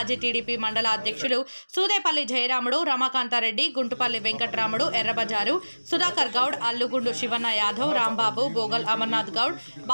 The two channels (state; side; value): inverted; both; correlation -1.00